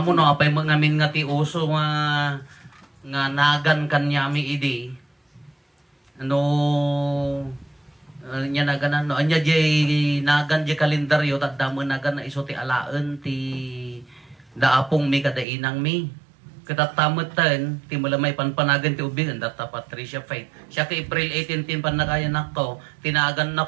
mo no apay ngamin nga ti uso nga nagan kanyami idi. Ano Nya naganan no anya jay nagan jay kalendaryo tadamo nagan na iso ti alaan ti daapong mi kada inang mi katatamatan ti malamay panpanagan ti ubing data Patricia Faith siya ka April 18 tin panakayan nako tinagan na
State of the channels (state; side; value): drops out; left; at 15.5 s